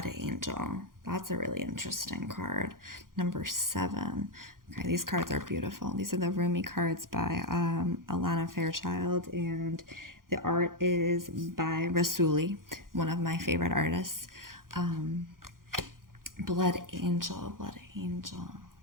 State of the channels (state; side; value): late; left; 0.91 ms